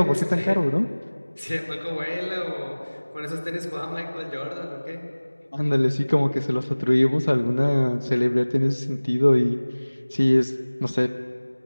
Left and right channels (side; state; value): both; inverted; correlation -1.00